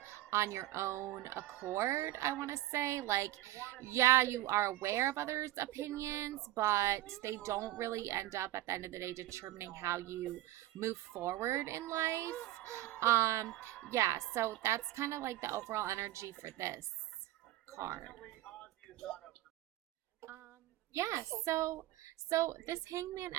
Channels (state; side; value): quieter; left; 15.5 dB